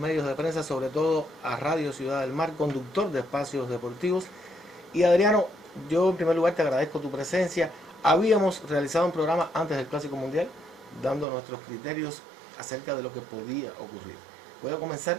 de prensa, sobre todo a Radio Ciudad del Mar, conductor de espacios deportivos. Y Adriano, yo en primer lugar te agradezco tu presencia. Habíamos realizado un programa antes del Clásico Mundial, dando nuestros criterios acerca de lo que podía ocurrir. Voy a comenzar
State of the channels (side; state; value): left; drops out; at 11.2 s